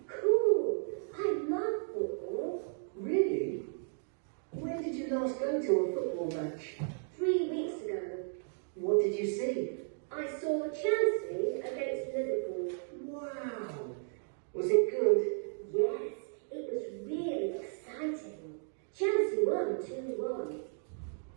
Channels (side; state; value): left; silent; digital silence